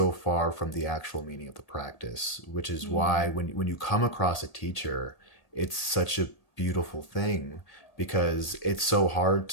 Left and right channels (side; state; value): right; late; 1.8 ms